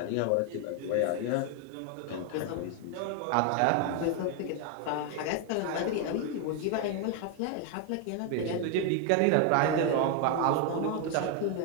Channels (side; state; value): both; different; correlation 0.01